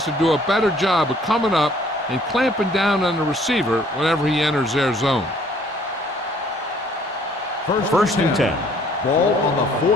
to do a better job of coming up and clamping down on the receiver whenever he enters their zone. First and 10. Ball on the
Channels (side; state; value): both; normal; correlation 0.59